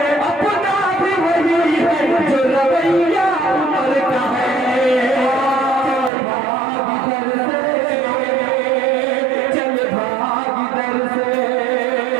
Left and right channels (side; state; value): left; drops out; at 6.1 s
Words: अपना भी वही है जो रवैया उमर का है। चल भाग दर से,